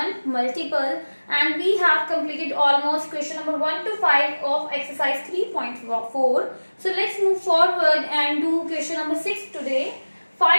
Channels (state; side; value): inverted; both; correlation -1.00